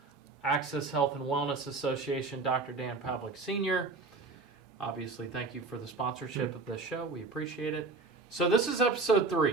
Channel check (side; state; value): left; quieter; 3.9 dB